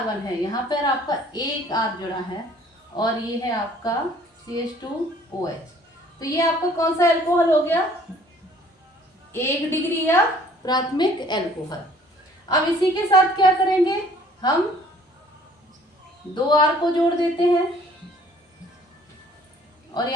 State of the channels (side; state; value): both; normal; correlation 0.56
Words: है, यहाँ पर आपका एक R जुड़ा है और ये है आपका CH2OH। तो ये आपका कौन सा एल्कोहल हो गया, 1 डिग्री या प्राथमिक एल्कोहल। अब इसी के साथ क्या करेंगे, हम 2 R को जोड़ देते हैं और